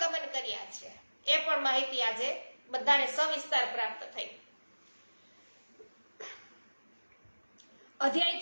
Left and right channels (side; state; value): both; inverted; correlation -1.00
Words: કર્યા છે, એ પણ માહિતી આજે બધાને સવિસ્તાર પ્રાપ્ત થઈ. અધ્યાય